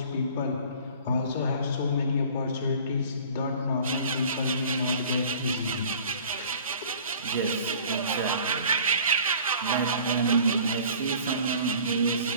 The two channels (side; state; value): both; inverted; correlation -0.48